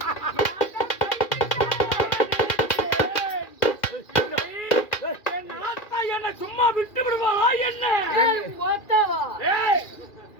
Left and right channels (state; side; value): late; right; 2.4 ms